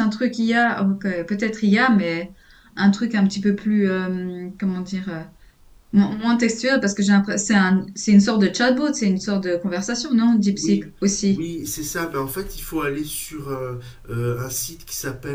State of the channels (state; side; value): identical; both; correlation 1.00